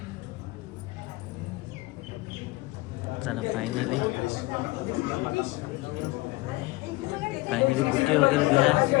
चला फायनली बुके वगैरे दिला.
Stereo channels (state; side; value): quieter; right; 21.6 dB